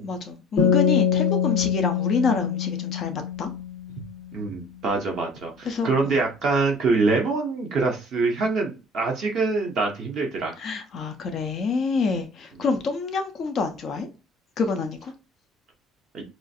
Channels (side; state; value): both; normal; correlation 0.45